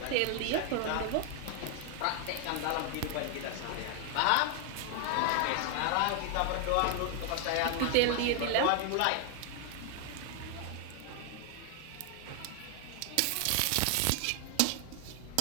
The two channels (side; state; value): both; different; correlation 0.00